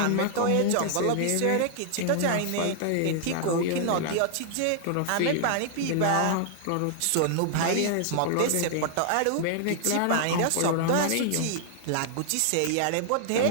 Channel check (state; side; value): different; both; correlation -0.01